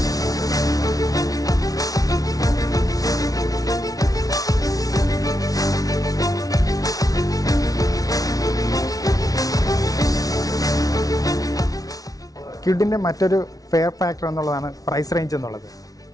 കിഡിൻ്റെ മറ്റൊരു ഫെയർ ഫാക്ടർ എന്നുള്ളതാണ് പ്രൈസ് റേഞ്ച് എന്നുള്ളത്.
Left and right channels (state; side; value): late; right; 0.18 ms